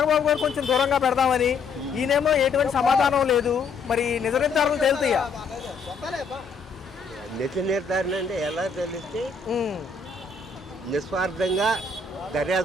గారు కొంచెం దూరంగా పెడదామని, ఈయనేమో ఎటువంటి సమాధానం లేదు. మరి నిజ నిర్ధారణలు తేలుతాయా? నిజ నిర్ధారణ అంటే ఎలా తెలిస్తే నిస్వార్థంగా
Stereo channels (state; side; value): quieter; right; 4.7 dB